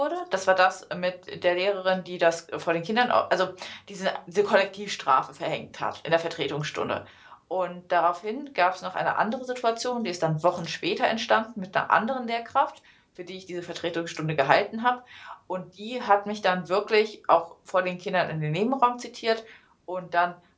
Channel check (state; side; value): identical; both; correlation 1.00